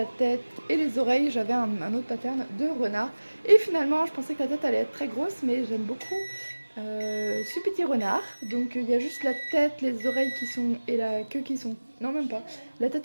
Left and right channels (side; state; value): both; inverted; correlation -1.00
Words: tête et les oreilles j'avais un autre pattern de renard. Et finalement je pensais que la tête allait être très grosse, mais j'aime beaucoup ce petit renard. Donc il y a juste la tête, les oreilles qui sont et la queue qui sont, non même pas, la